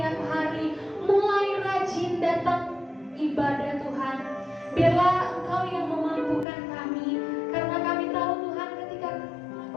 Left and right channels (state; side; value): drops out; right; at 6.5 s